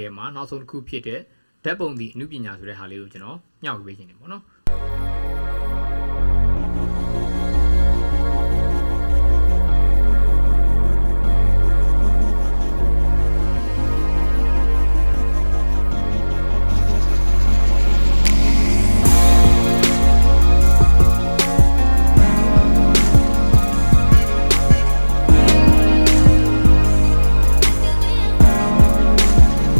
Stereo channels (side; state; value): both; inverted; correlation -1.00